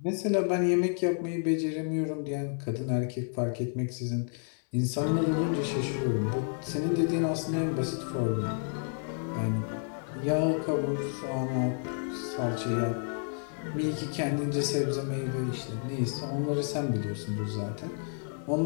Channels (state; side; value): silent; right; 57 dB below the other